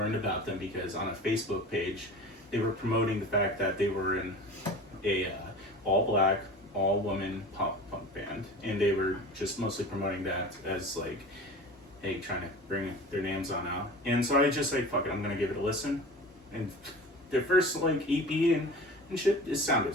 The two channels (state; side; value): normal; both; correlation 0.36